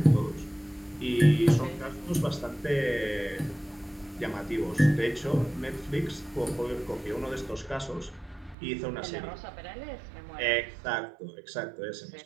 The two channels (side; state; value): left; drops out; at 8.6 s